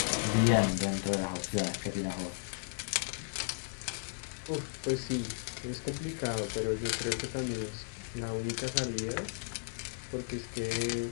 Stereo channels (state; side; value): silent; right; digital silence